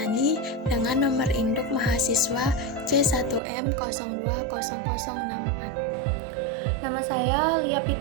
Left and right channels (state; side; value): drops out; left; at 3.4 s